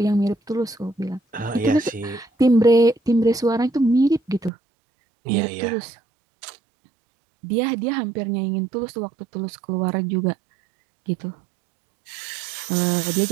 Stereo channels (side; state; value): left; drops out; at 4.5 s